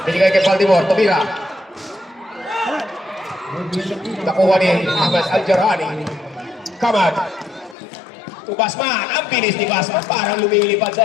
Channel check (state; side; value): drops out; right; at 7.8 s